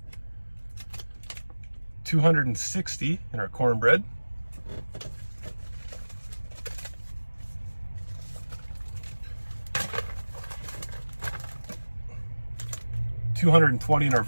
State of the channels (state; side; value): inverted; both; correlation -1.00